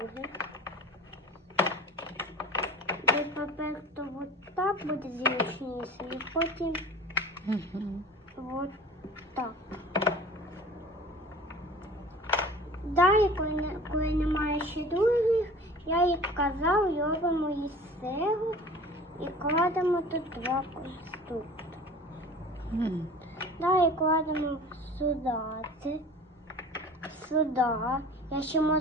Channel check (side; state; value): both; normal; correlation 0.41